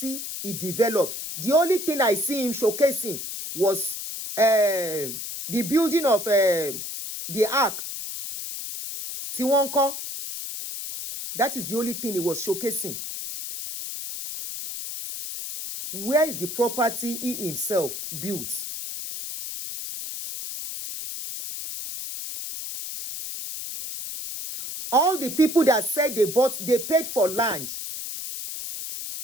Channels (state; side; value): noise; left; hiss, 7 dB below the sound